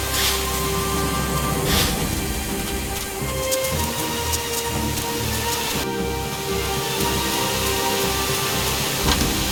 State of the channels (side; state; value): both; identical; correlation 1.00